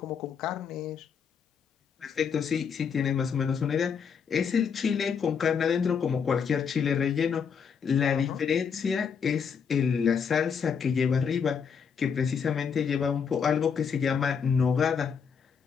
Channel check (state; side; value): quieter; right; 6.6 dB